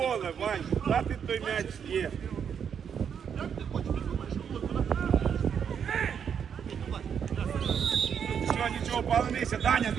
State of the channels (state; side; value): quieter; left; 7.6 dB